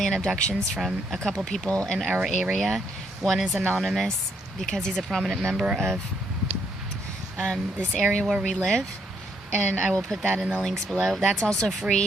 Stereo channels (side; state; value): both; normal; correlation 0.73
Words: abductions from a couple people in our area. One is anonymous because he's a prominent member of this area where we live. And I will put that in the links below. That's also